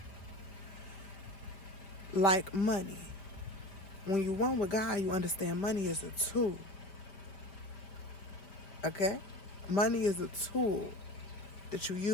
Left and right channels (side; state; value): right; late; 5.1 ms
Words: Like money. When you're one with God, you understand money is a tool. Okay? Money is a tool that you